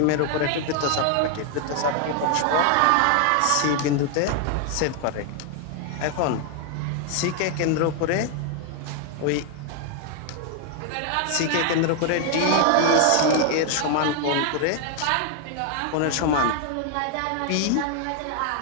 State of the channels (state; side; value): different; both; correlation 0.00